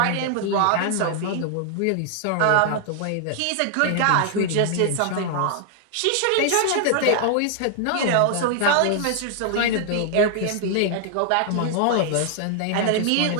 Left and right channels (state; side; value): different; both; correlation 0.00